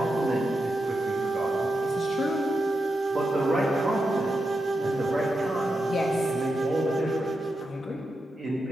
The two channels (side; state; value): both; normal; correlation 0.87